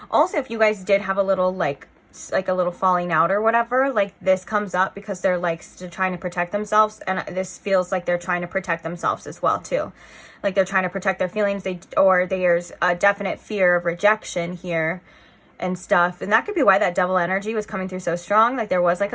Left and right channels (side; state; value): both; identical; correlation 1.00